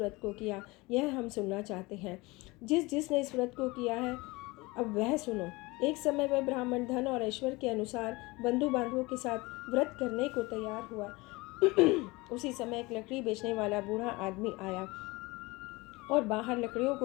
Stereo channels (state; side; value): quieter; right; 23.1 dB